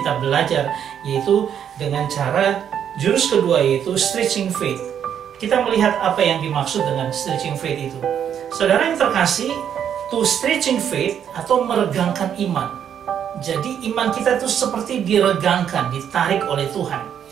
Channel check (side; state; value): left; quieter; 8.9 dB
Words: belajar, yaitu dengan cara jurus kedua, yaitu stretching faith. Kita melihat apa yang dimaksud dengan stretching faith itu. Saudara yang terkasih, to stretching faith atau meregangkan iman. Jadi iman kita itu seperti diregangkan, ditarik oleh Tuhan.